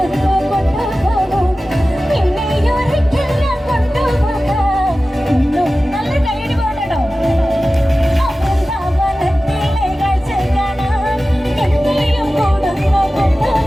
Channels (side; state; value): both; normal; correlation 0.95